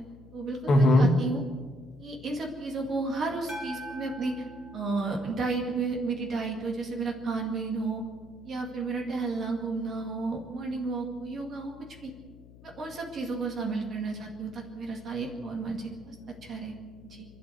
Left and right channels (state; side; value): noise; left; hum, 19 dB below the sound